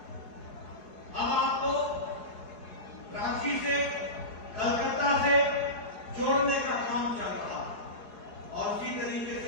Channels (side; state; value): right; late; 4.7 ms